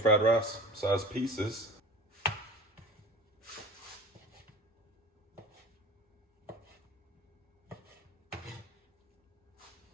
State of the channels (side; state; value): both; normal; correlation 0.37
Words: fried rice size pieces.